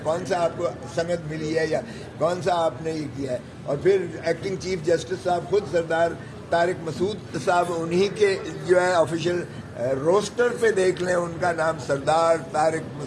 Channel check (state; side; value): identical; both; correlation 1.00